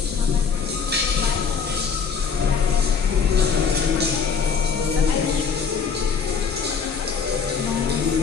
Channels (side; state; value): right; quieter; 5.9 dB